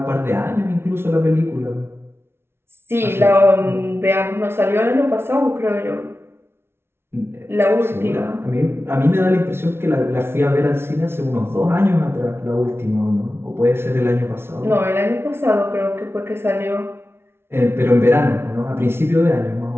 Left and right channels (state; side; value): late; left; 0.12 ms